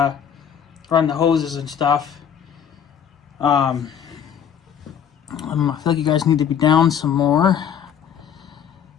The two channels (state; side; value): quieter; right; 8.4 dB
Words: the hoses and stuff. I feel like you guys need to be down some more.